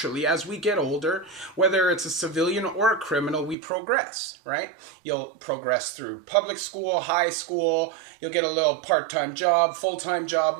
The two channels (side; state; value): left; drops out; at 3.6 s